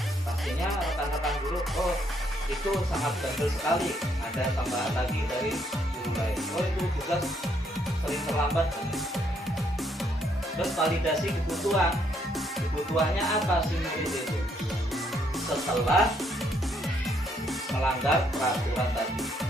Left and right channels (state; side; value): normal; both; correlation 0.71